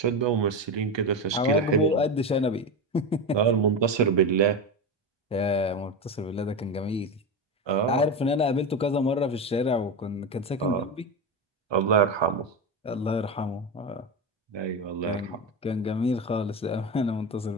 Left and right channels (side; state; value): both; normal; correlation 0.18